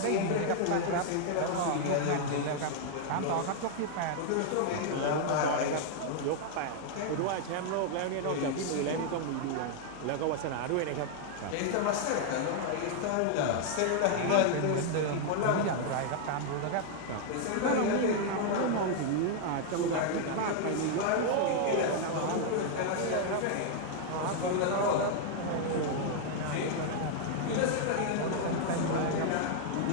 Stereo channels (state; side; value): different; both; correlation 0.00